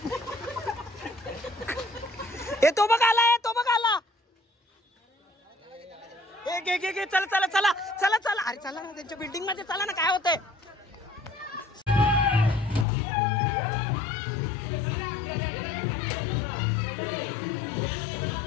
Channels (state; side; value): drops out; right; at 12.9 s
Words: तो बघ आला चला अरे चला ना त्यांच्या बिल्डिंग मध्ये चला ना काय होतंय